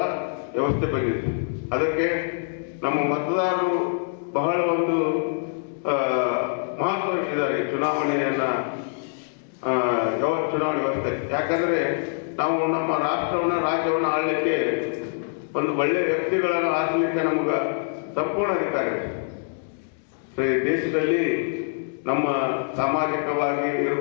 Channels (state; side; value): silent; right; digital silence